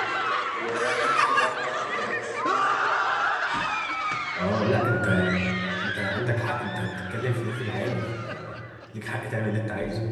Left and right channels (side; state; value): both; identical; correlation 1.00